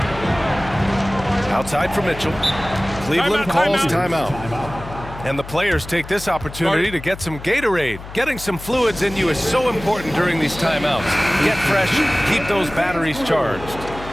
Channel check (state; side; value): noise; left; hum, 13 dB below the sound